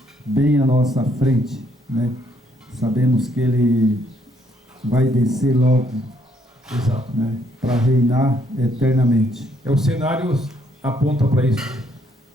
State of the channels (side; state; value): both; normal; correlation 0.70